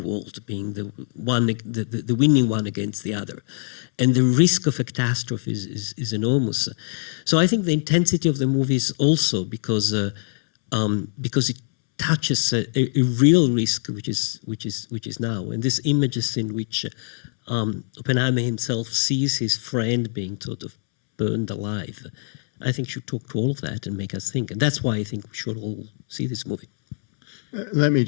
being the winning one against the other. And the risk of a catastrophe is enormous. So I think the intensity of the movie is also because it touches a real risk, which is now. And these images in which Oppenheimer himself sees his friend being sort of burned alive, I think should talk to all of that and make us think. And that's why I think we should all see this movie. Let me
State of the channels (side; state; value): right; silent; 63 dB below the other